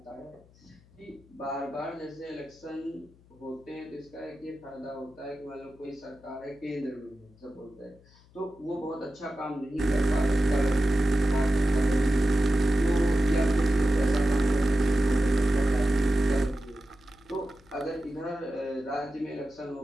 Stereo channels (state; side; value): noise; left; hum, 28 dB below the sound